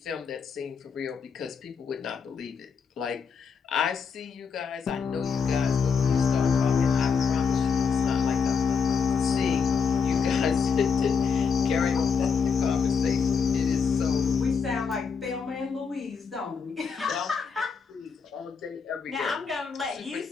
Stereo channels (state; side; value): quieter; right; 5.8 dB